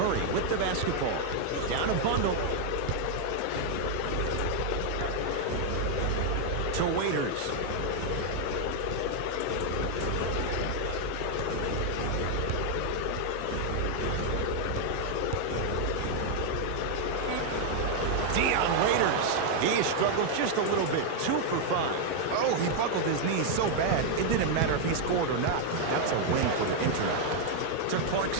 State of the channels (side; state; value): both; different; correlation 0.00